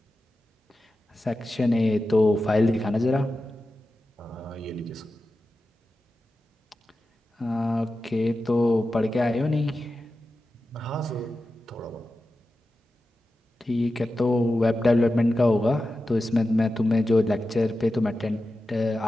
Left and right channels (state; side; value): normal; both; correlation 0.92